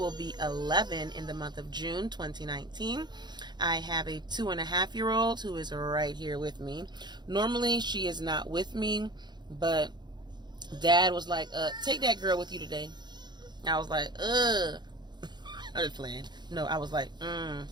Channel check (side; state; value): left; late; 0.21 ms